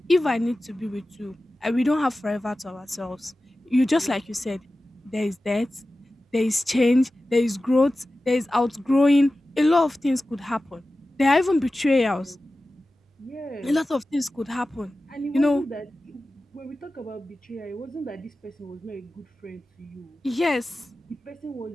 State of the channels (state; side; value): normal; both; correlation 0.95